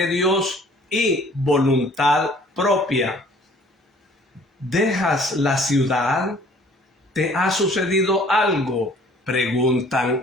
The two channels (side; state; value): both; normal; correlation 0.54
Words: Dios y voluntad propia. ¿Dejas la ciudad? ¿Te ha sucedido algo?, preguntan